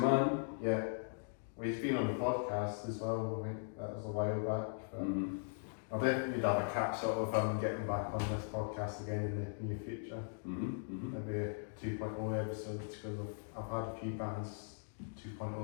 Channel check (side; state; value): right; silent; digital silence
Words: Yeah. Well, he's been on the podcast as well. I think that was a while back. But I'll definitely have a catch up with him getting back on this podcast again in the near future. Maybe a 2.0 episode, because I've had a few bands